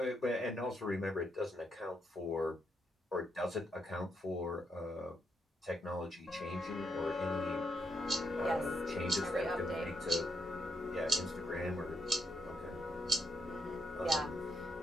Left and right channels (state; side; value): normal; both; correlation 0.79